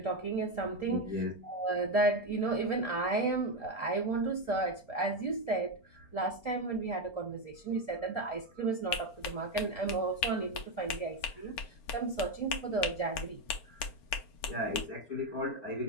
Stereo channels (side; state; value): right; late; 4.4 ms